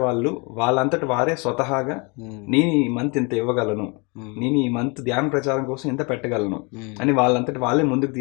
వాళ్ళంతటి వారే స్వతహాగా నేను ఈ మంత్ ఇంత ఇవ్వగలను, నేను ఈ మంత్ ధ్యాన ప్రచారం కోసం ఇంత పెట్టగలను అని వాళ్ళంతటి వాళ్ళే ముందుకు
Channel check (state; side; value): quieter; right; 30.6 dB